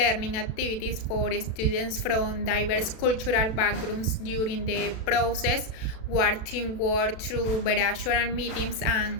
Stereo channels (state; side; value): late; right; 36 ms